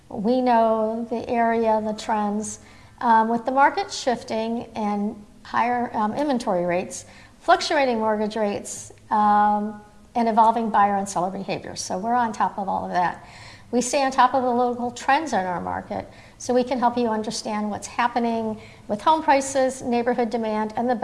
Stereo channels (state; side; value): identical; both; correlation 1.00